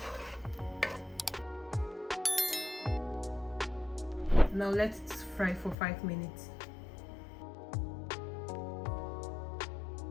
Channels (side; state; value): right; drops out; at 5.8 s